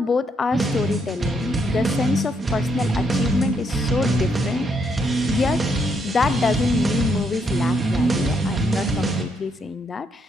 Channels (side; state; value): both; normal; correlation 0.75